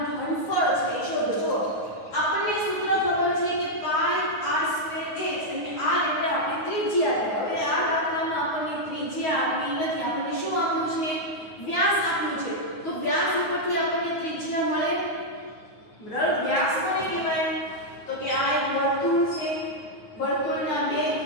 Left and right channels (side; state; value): right; late; 9.5 ms